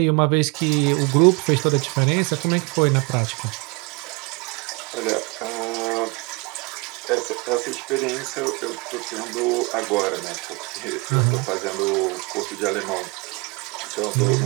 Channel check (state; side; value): quieter; left; 27.7 dB